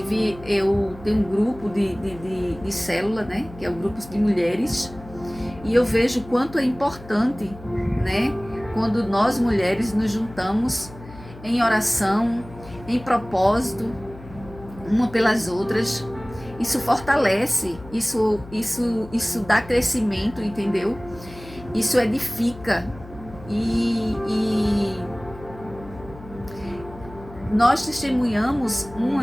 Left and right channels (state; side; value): noise; left; hum, 17 dB below the sound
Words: eu tenho um grupo de célula, né? Que é o grupo de mulheres, e eu vejo o quanto é importante, né? Quando nós mulheres nos juntamos em oração, em propósito, uma pelas outras. Isso fortalece, isso dá crescimento, entendeu? Isso edifica e nós testemunhamos